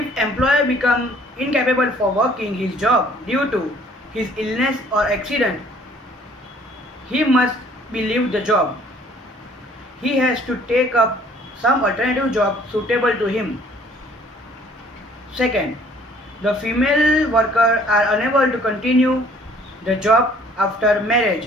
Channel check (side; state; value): both; normal; correlation 0.57